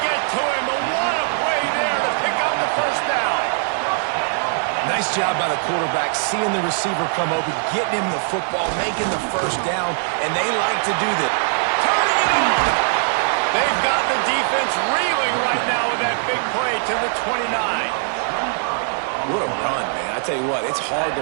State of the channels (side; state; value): left; silent; digital silence